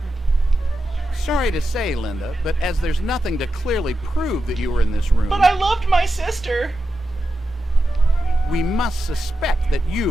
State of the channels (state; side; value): normal; both; correlation 0.89